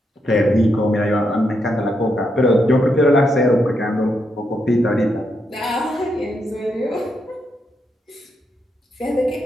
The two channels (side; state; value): both; normal; correlation 0.81